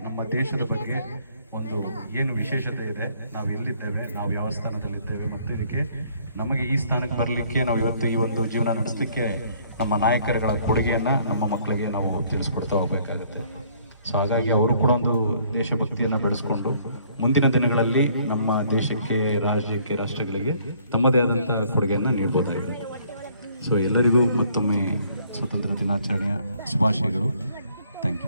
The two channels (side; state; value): both; inverted; correlation -0.62